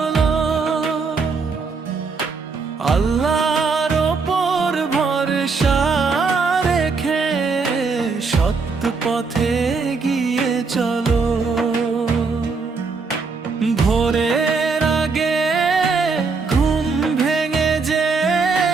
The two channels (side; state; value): left; quieter; 4.6 dB